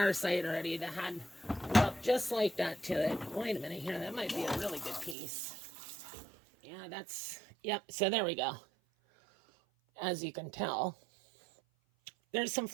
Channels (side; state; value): left; drops out; at 5.2 s